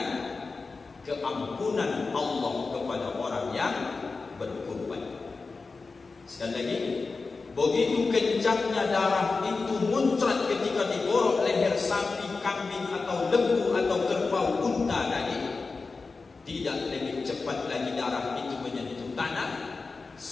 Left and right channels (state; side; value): quieter; right; 4.1 dB